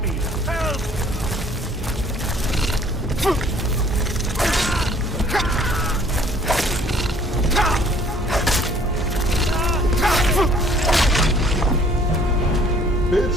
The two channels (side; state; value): both; normal; correlation 0.57